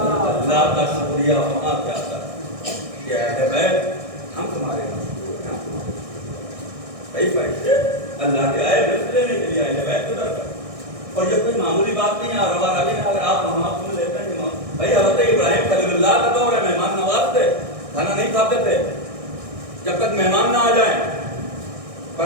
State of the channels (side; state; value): left; late; 1.6 ms